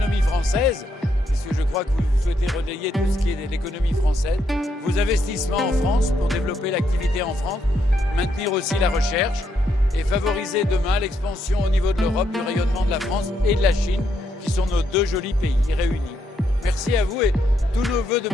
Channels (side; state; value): both; normal; correlation 0.77